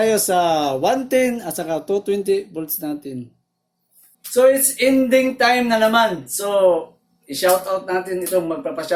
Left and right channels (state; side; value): identical; both; correlation 1.00